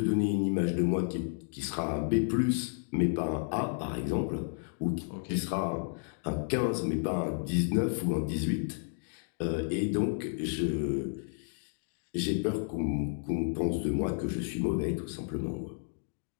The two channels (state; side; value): silent; right; digital silence